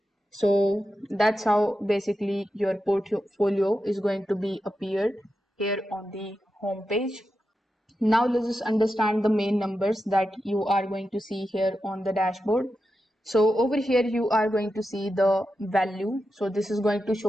So that's how basically your portfolio is going to be appeared here on the home page. Now let's just understand the main numbers that you are going to see here on the dashboard. So over here you are going to see the value. So this is going to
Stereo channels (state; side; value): normal; both; correlation 0.89